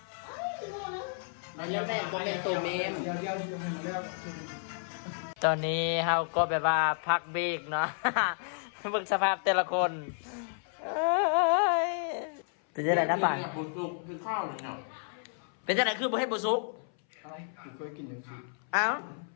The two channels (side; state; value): right; silent; 57 dB below the other